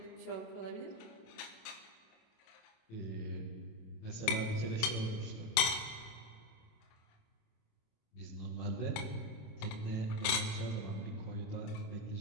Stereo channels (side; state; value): right; late; 27 ms